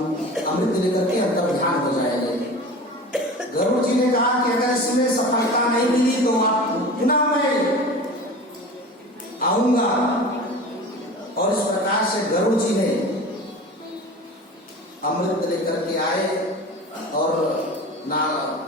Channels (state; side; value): normal; both; correlation 0.35